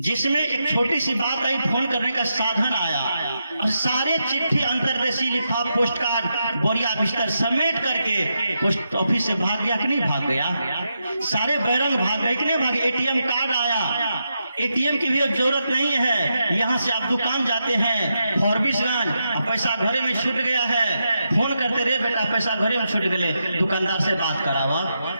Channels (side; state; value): both; inverted; correlation -0.85